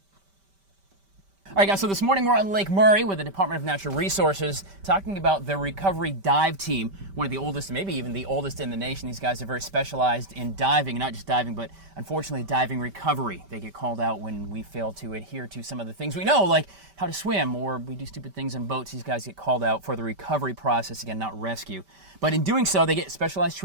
All right, guys, so this morning we're on Lake Murray with the Department of Natural Resources talking about the recovery dive team, one of the oldest, maybe even the oldest in the nation. These guys are very specialized in diving, not just diving, but unfortunately diving recovery. They get called out when we fail to adhere to some of the things we know, like how to swim, or we do stupid things in boats. These guys get called out for the recovery process, again, not rescue. But in doing so, they get specialized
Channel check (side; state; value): left; late; 5.1 ms